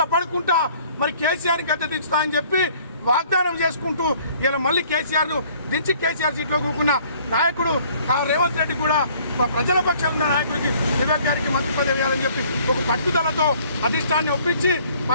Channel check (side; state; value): both; inverted; correlation -0.57